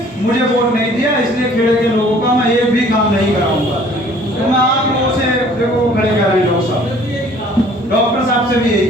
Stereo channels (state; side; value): normal; both; correlation 0.54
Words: मुझे वोट नहीं दिया, इसलिए खेड़े के लोगों का मैं एक भी काम नहीं कराऊंगा। तो मैं आप लोगों से देखो खड़े कर रहे हैं डॉक्टर साहब से भी यही